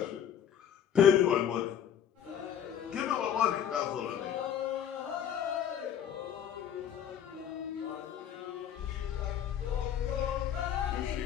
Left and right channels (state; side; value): quieter; right; 9.2 dB